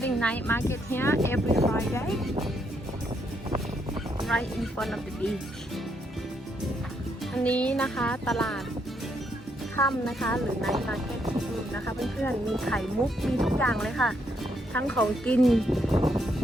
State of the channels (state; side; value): normal; both; correlation 0.75